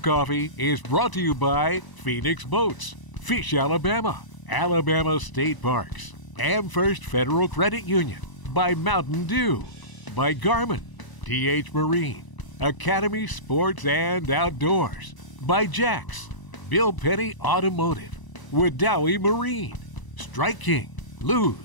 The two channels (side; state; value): right; late; 1.0 ms